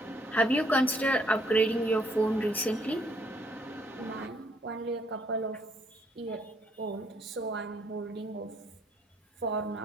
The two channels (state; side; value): normal; both; correlation 0.68